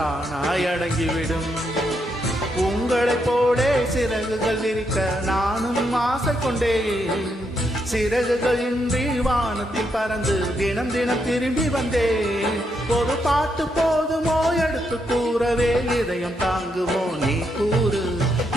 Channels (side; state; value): both; normal; correlation 0.79